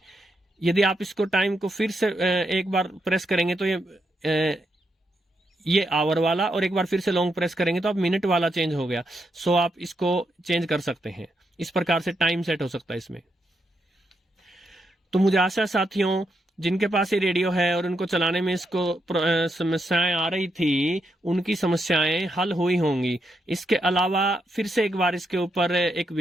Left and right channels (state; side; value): normal; both; correlation 0.81